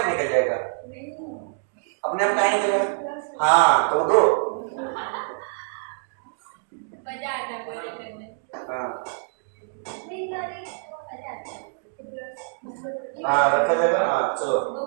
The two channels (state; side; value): silent; left; digital silence